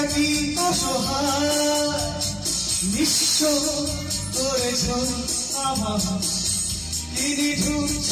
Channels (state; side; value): identical; both; correlation 1.00